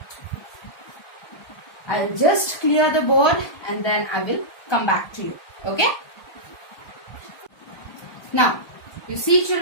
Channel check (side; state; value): right; late; 1.2 ms